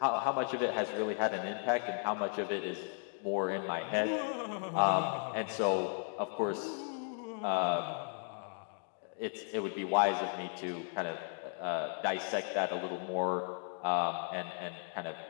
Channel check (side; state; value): right; silent; 54 dB below the other